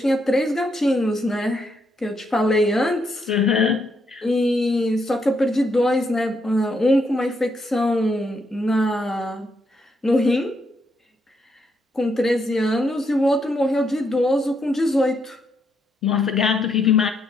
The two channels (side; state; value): both; normal; correlation 0.78